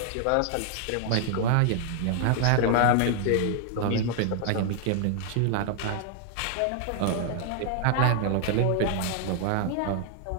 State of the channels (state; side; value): different; both; correlation 0.00